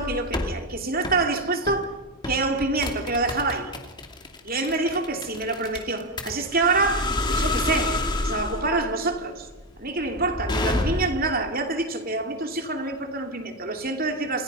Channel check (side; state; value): both; normal; correlation 0.11